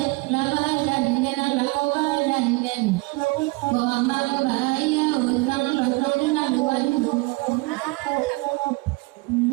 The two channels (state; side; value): quieter; left; 24.3 dB